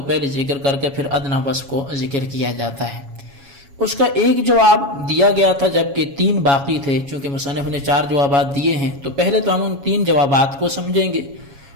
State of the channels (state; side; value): late; left; 7.2 ms